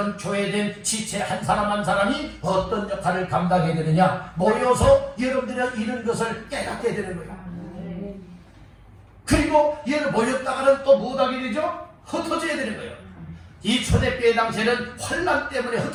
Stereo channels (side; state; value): both; identical; correlation 1.00